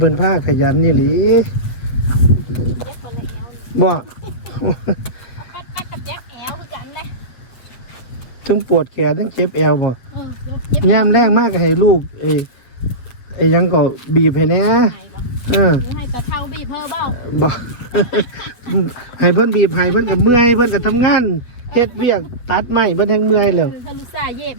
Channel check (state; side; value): late; right; 8.0 ms